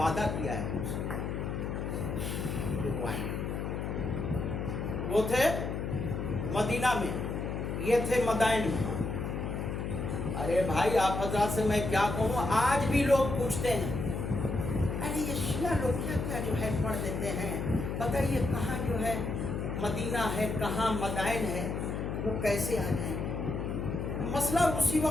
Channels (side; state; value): left; noise; hum, 3 dB below the sound